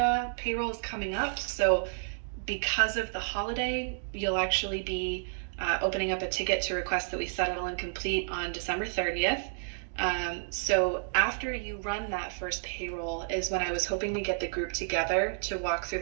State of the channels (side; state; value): left; silent; digital silence